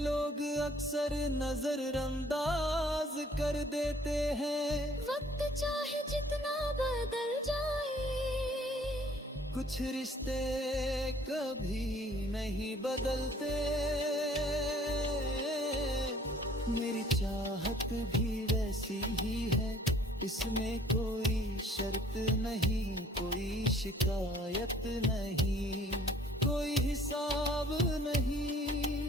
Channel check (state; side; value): normal; both; correlation 0.56